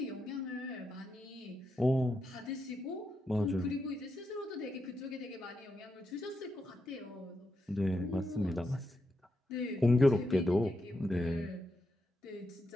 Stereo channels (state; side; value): normal; both; correlation 0.84